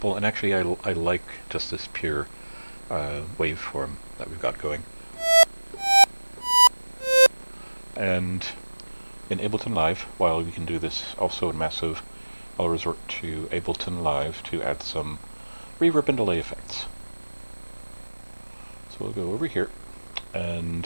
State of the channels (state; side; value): inverted; both; correlation -1.00